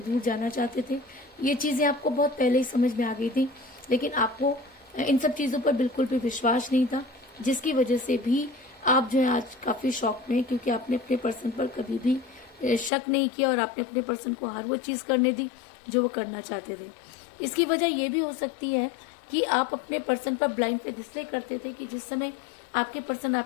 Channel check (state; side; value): drops out; right; at 12.9 s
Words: जाना चाहते थे। ये चीजें आपको बहुत पहले ही समझ में आ गई थी, लेकिन आपको इन सब चीजों पर बिल्कुल भी विश्वास नहीं था, जिसकी वजह से भी आप जो है आज काफी शॉक में हैं, क्योंकि आपने अपने पर्सन पर कभी भी शक नहीं किया और आपने अपने पर्सन को हर वो चीज करने दी जो वो करना चाहते थे। इसकी वजह ये भी हो सकती है कि आप अपने पर्सन पर ब्लाइंड फेथ इसलिए करते थे कि जिस समय आपके पर्सन